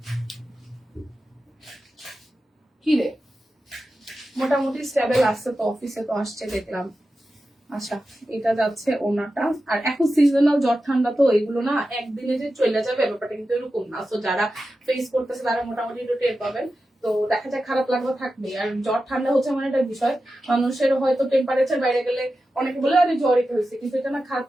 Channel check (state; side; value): normal; both; correlation 0.92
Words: কি রে, মোটামুটি স্টেবল আসছে তো, অফিসে তো আসছে দেখলাম। আচ্ছা এটা যাচ্ছে ওনাটা। আর এখন সিজনাল জ্বর ঠান্ডা তো, এগুলো না একদিনে যে চলে যাবে ব্যাপারটা কিন্তু এরকম না। তো যারা ফেস করতেছে তারা মোটামুটি একটু টের পাবেন। তো দেখা যায় খারাপ লাগবে থাকবে। আর জ্বর ঠান্ডা হচ্ছে মানে একটা বিষয়, মানুষের হয়তো টেম্পারেচার বাইরে গেলে অনেকে বলে আরে জ্বরই হয়েছে, কিন্তু এটা না খারাপ